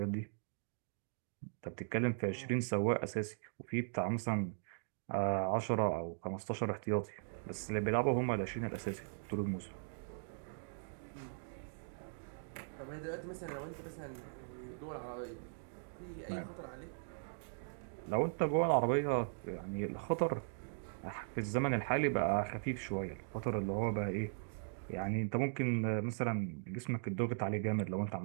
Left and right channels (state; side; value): silent; left; digital silence